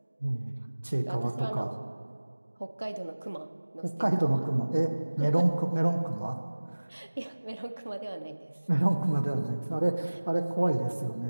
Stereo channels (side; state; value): both; inverted; correlation -1.00